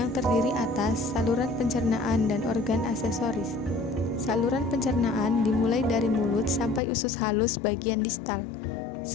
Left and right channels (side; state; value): right; drops out; at 6.8 s